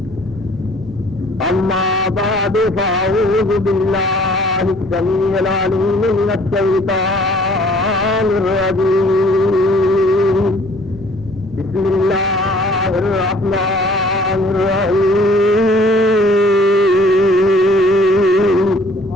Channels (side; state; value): both; normal; correlation 0.55